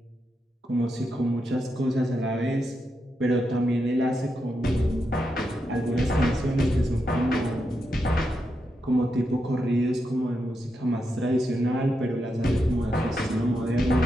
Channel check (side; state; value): both; normal; correlation 0.85